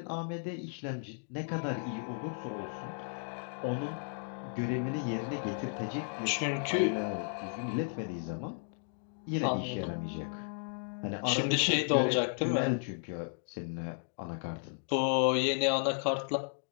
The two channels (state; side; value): silent; right; 55 dB below the other